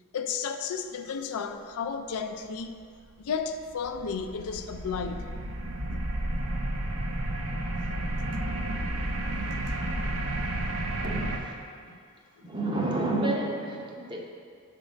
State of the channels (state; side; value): normal; both; correlation 0.45